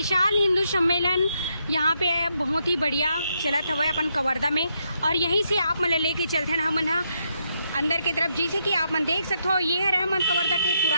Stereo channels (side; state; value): both; inverted; correlation -0.79